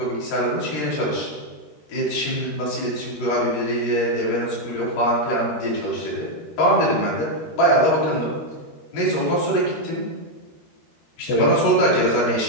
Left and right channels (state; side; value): late; right; 13 ms